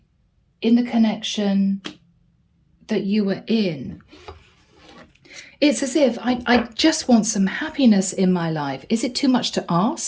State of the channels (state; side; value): identical; both; correlation 1.00